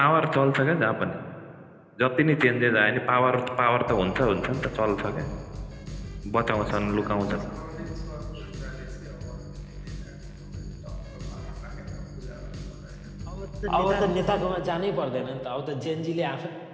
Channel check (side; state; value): both; identical; correlation 1.00